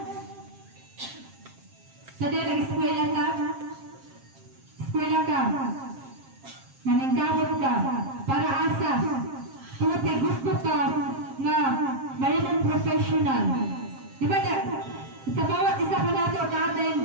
Sa di nag-eskwela ka, naningkamot ka, para asa, kung gusto ka nga mayroong professional. Di ba sa bawat isa ka nato,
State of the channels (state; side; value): late; left; 7.5 ms